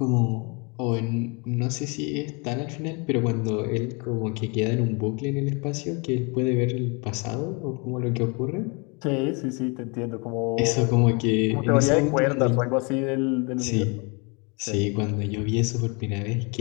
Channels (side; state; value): right; quieter; 31.4 dB